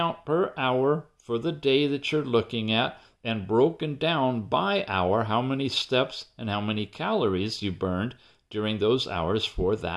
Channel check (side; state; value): both; identical; correlation 1.00